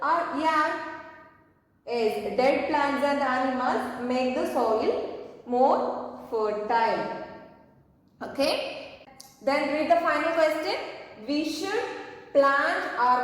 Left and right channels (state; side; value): identical; both; correlation 1.00